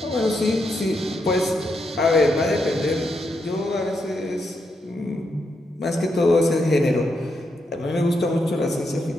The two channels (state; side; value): normal; both; correlation 0.82